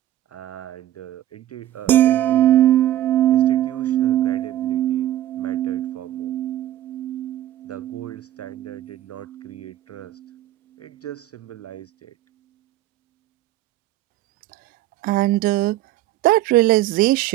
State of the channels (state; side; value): quieter; left; 13.6 dB